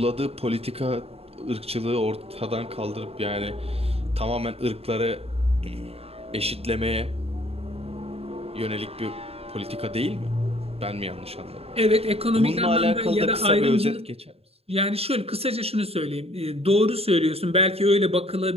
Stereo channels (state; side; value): late; left; 0.29 ms